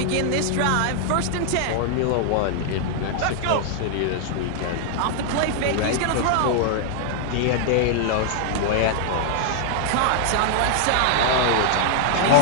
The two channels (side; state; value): both; different; correlation -0.01